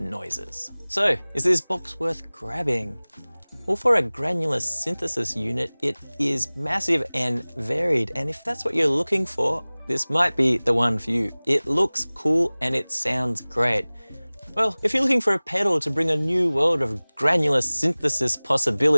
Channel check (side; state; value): both; inverted; correlation -1.00